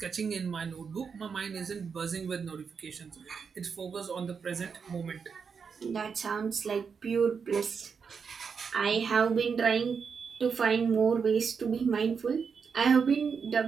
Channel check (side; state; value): left; quieter; 6.0 dB